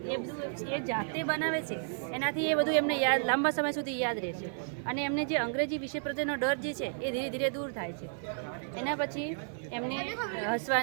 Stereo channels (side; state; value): left; silent; digital silence